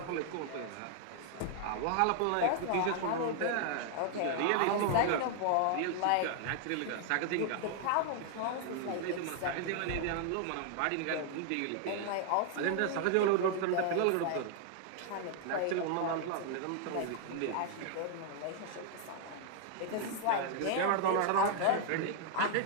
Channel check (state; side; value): different; both; correlation 0.00